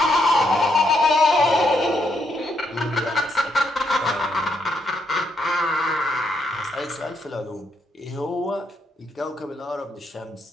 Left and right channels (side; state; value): both; normal; correlation 0.77